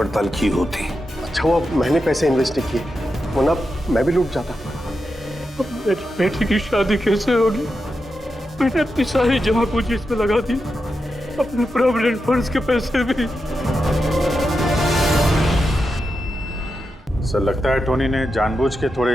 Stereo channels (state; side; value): normal; both; correlation 0.88